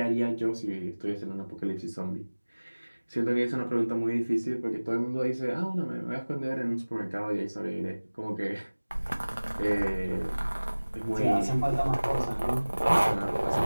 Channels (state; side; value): inverted; both; correlation -1.00